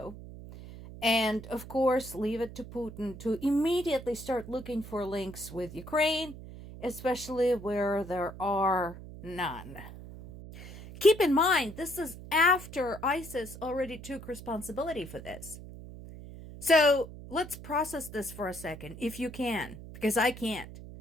And, of course, leave it to Putin to immediately start looking for links with Ukraine, especially where there are none. Keep in mind, this is after ISIS already took responsibility for this. So, let's process this for a second, if you can, because I can't.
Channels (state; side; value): noise; right; hum, 14 dB below the sound